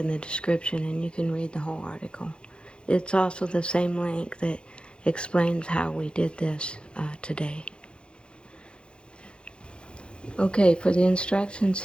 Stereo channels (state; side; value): late; right; 0.054 ms